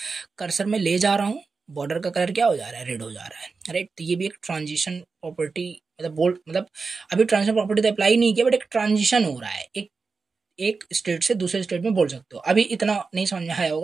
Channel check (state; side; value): quieter; left; 4.5 dB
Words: कर्सर में ले जा रहा हूँ, बॉर्डर का कलर क्या हो जा रहा है, रेड हो जा रहा है, राइट। तो ये भी एक ट्रांजिशन प्रॉपर्टी, मतलब बोल्ड, मतलब अभी ट्रांजिशन प्रॉपर्टी तो अप्लाई नहीं किया, बट एक ट्रांजिशन हो रहा है, एक स्टेट से दूसरे स्टेट में बोल सकते हो। अभी इतना नहीं समझ में आया